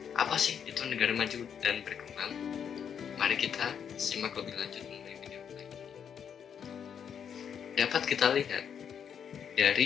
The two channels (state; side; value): quieter; right; 7.9 dB